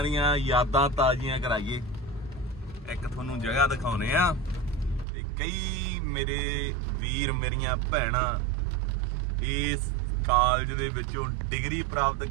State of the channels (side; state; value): left; drops out; at 5.1 s